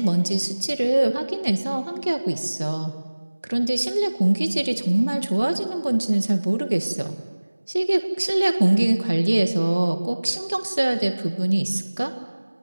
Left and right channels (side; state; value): both; inverted; correlation -1.00